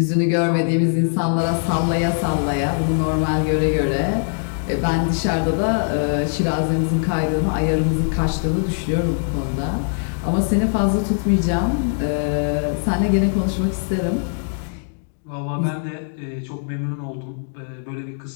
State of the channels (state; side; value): silent; right; digital silence